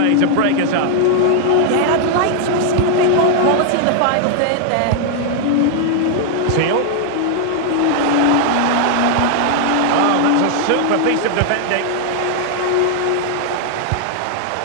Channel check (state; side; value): different; both; correlation 0.00